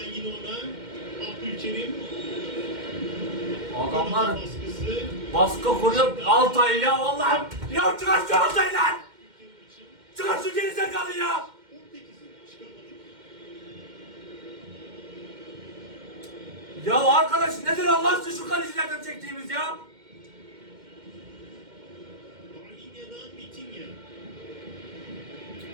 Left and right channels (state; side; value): late; left; 2.1 ms